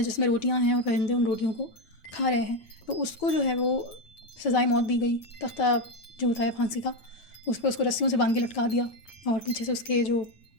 جس میں روٹیاں ہیں اور پرندے ان روٹیوں کو کھا رہے ہیں، تو اس کو جو ہے وہ سزائے موت دی گئی۔ تختہ جو ہوتا ہے پھانسی کا، اس پہ اس کو رسیوں سے باندھ کے لٹکا دیا اور پیچھے سے اس کے جو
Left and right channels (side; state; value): right; late; 9.2 ms